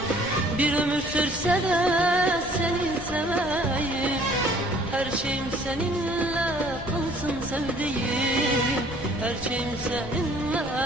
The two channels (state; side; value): noise; left; rumble, 12 dB below the sound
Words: Bir ömür sürse de seni seveyim, her şeyim seninle kalsın sevdiğim. Her şeyim